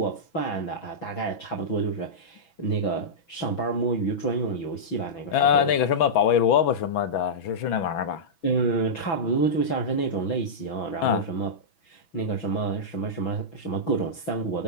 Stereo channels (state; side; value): late; right; 6.1 ms